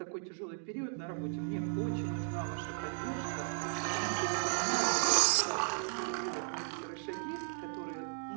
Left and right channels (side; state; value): left; silent; 54 dB below the other